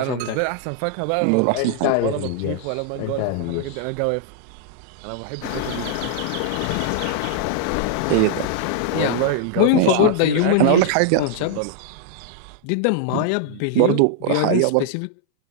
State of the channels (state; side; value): different; both; correlation 0.00